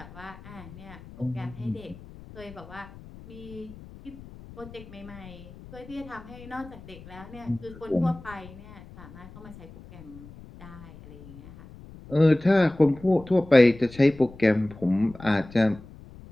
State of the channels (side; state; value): left; noise; rumble, 18 dB below the sound